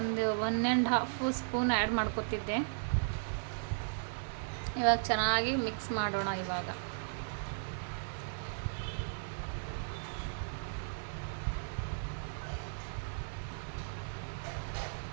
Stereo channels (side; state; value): left; silent; digital silence